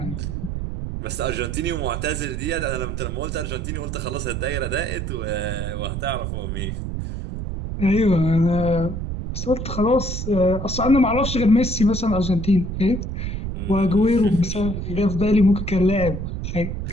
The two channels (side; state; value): right; noise; rumble, 4 dB below the sound